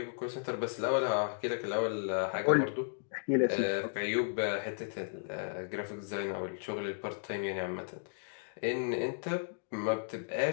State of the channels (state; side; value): silent; right; digital silence